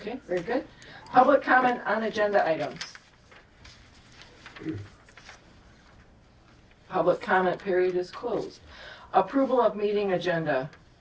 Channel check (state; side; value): identical; both; correlation 1.00